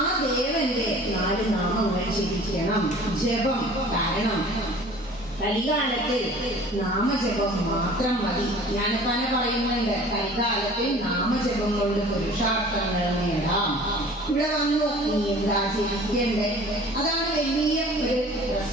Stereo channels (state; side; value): normal; both; correlation 0.47